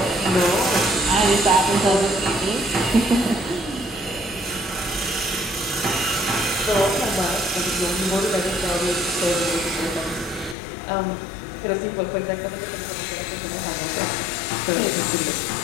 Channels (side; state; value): right; drops out; at 10.6 s